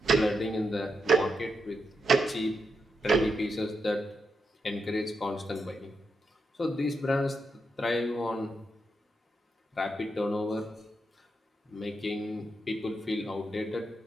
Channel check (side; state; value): both; normal; correlation 0.84